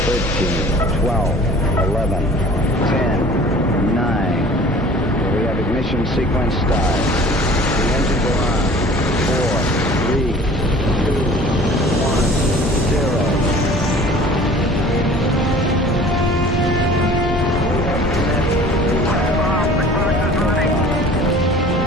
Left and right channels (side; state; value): both; normal; correlation 0.46